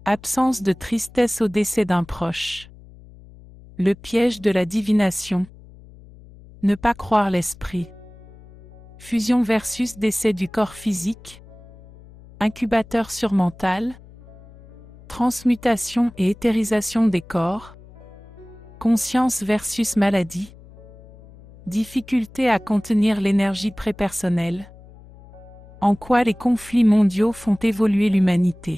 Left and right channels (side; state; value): left; noise; hum, 21 dB below the sound